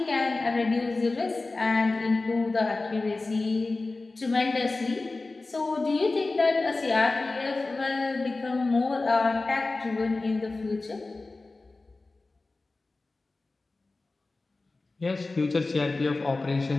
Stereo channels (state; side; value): quieter; right; 3.4 dB